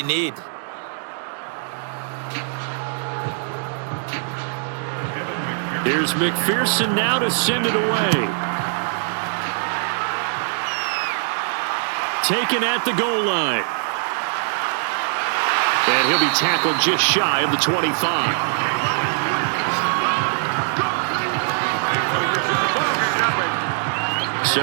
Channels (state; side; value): silent; left; digital silence